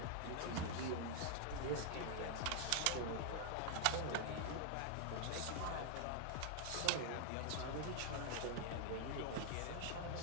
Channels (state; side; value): different; both; correlation 0.00